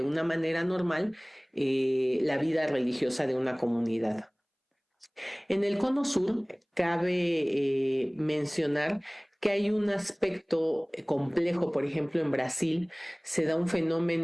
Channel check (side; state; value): both; identical; correlation 1.00